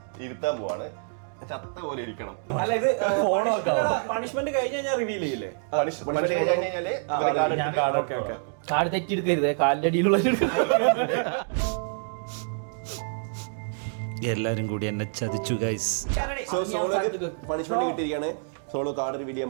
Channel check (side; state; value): left; silent; digital silence